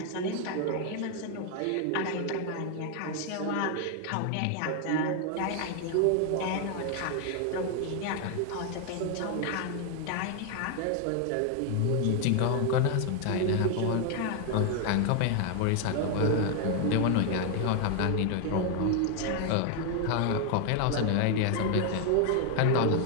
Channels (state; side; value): different; both; correlation 0.00